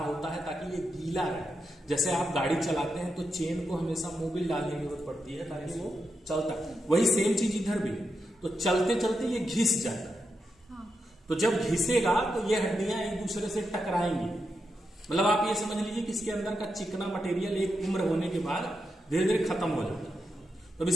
है ताकि ये गीला रहे। जैसे आप गाड़ी चलाते हैं तो चेन को हमेशा मोबिल डालने की जरूरत पड़ती है ताकि वो चलता है, वही सेम चीज इधर भी। तो चलते चलते ये घिस जाता है, तो जब घिसेगा तो ये हड्डियां एक दूसरे से टकराएंगी। मतलब आप ये समझ लीजिए कि इसके अंदर का चिकना मटेरियल एक उम्र होने के बाद धीरे धीरे खत्म हो जाता है। तो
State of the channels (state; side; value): normal; both; correlation 0.86